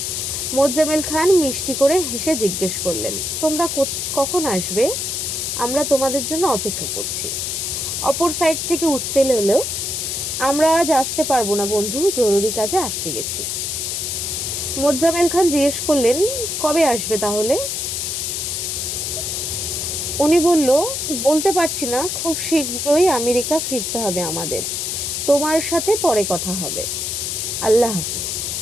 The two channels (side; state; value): left; noise; hiss, 2 dB below the sound